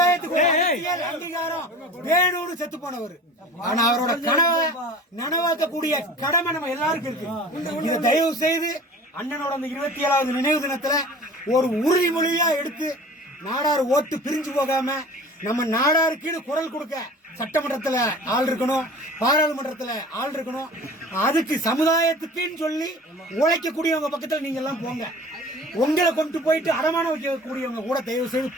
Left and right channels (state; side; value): normal; both; correlation 0.42